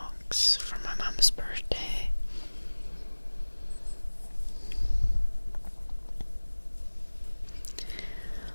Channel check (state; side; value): inverted; both; correlation -1.00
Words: for my mom's birthday.